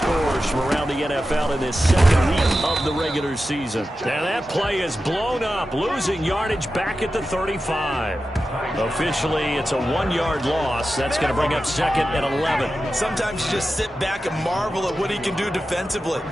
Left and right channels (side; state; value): both; normal; correlation 0.92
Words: from around the NFL in this second week of the regular season. Now that play is blown up, losing yardage back at the 35. Officially, it's a 1-yard loss. That's going to bring up second and 11. Sometimes you just sit back and marvel at what he can do defensively.